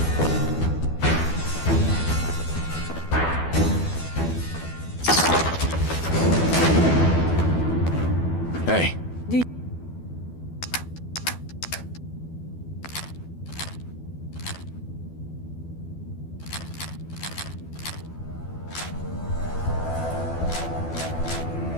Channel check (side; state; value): right; late; 12 ms